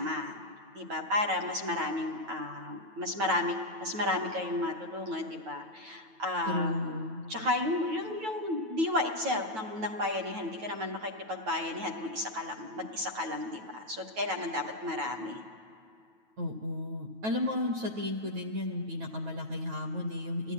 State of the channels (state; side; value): late; left; 9.2 ms